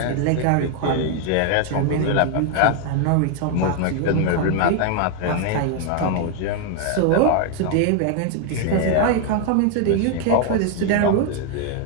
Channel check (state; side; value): different; both; correlation 0.01